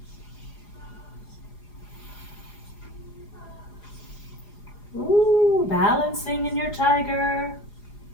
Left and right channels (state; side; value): late; right; 4.9 ms